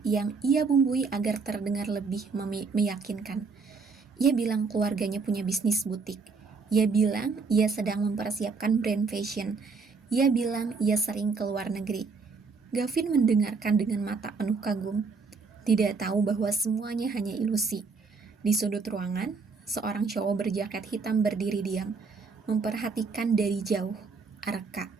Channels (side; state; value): left; quieter; 4.7 dB